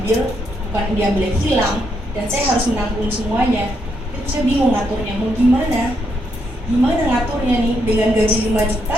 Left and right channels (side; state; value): both; normal; correlation 0.78